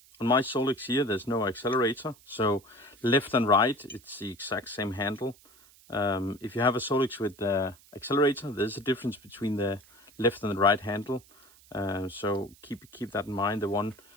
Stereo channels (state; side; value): noise; right; hiss, 26 dB below the sound